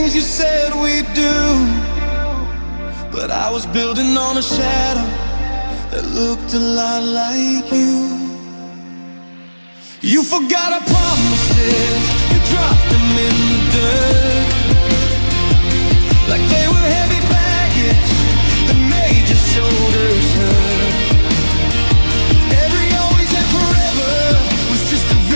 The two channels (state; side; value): inverted; both; correlation -1.00